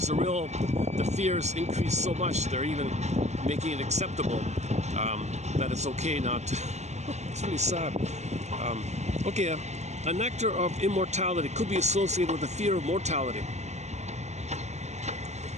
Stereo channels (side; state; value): left; late; 0.33 ms